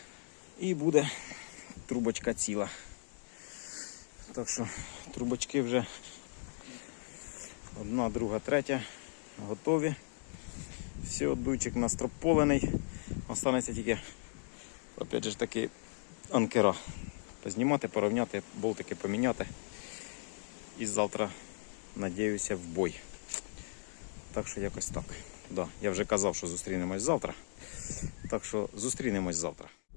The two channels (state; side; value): silent; right; digital silence